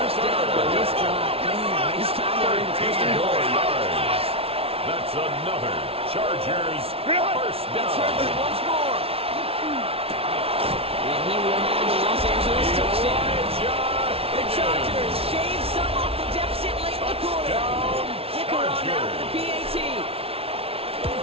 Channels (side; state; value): left; late; 0.28 ms